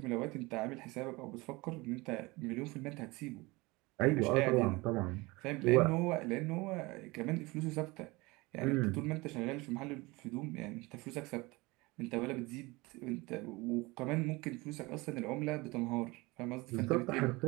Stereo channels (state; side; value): quieter; left; 23.3 dB